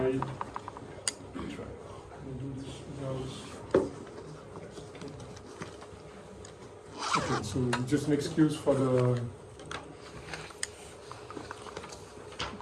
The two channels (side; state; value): both; identical; correlation 1.00